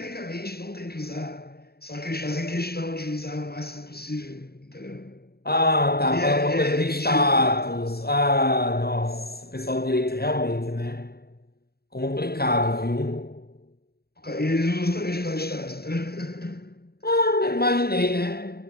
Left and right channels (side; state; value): right; late; 0.46 ms